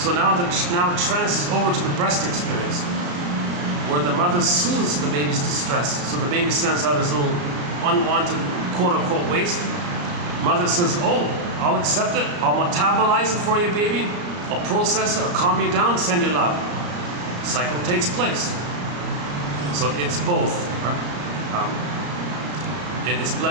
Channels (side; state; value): left; late; 34 ms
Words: now it transfers over to the breast experience, where the mother soothes the baby's distress. So the baby sends out his little unwanted quote-unquote waste. Mother says, oh, I'll accept it, I'll metabolize it for you, baby, I'll process it, I'll calm you down, send you love. Cycle takes place. So it's both, right? And it's